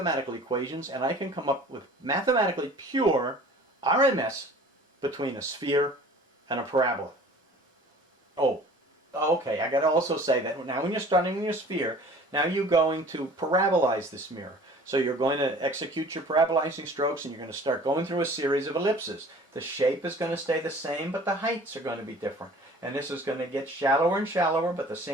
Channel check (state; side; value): normal; both; correlation 0.47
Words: equations and I can come up with mathematically pure RMS between a sphere and a parabola. Oh, okay, I got to also say that now when you're starting with your sphere, now you're going to parabolize this mirror. So you're going to execute your parabolizing strokes and you're going to start going through a series of ellipses. The shape is going to stay the same, but the heights are going to be different. And this is going to get shallower and shallower, but the